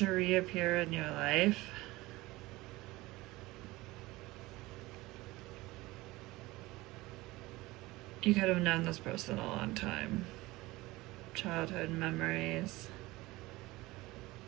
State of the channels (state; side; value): quieter; left; 20.0 dB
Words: reappear in your life. You could have known this person a long time. Childhood memories.